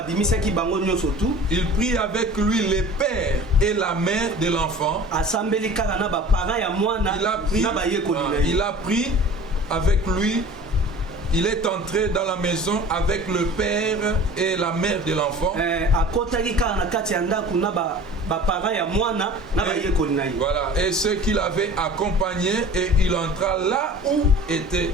prit avec lui le père et la mère de l'enfant. Il a pris avec lui. Il est entré dans la maison avec le père et la mère de l'enfant. Voilà. Et ceux qui l'avaient accompagné, et il entra là où était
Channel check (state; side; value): normal; both; correlation 0.42